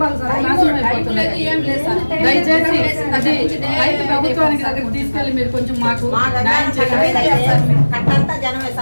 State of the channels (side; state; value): both; inverted; correlation -1.00